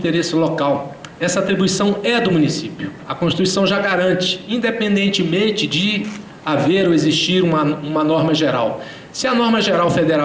local. Essa atribuição é do município. A Constituição já garante, independentemente de haver ou existir uma norma geral. Se a norma geral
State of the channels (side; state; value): both; identical; correlation 1.00